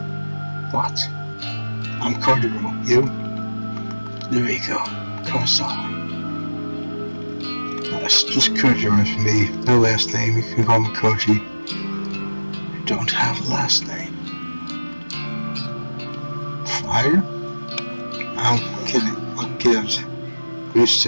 What? I'm Kojiro. You? Noriko. Kurosawa. That's just Kojiro for me. No last name. You can call me Koji. You don't have a last name. Fire? I'm kidding. What gives? Used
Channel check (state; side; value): inverted; both; correlation -1.00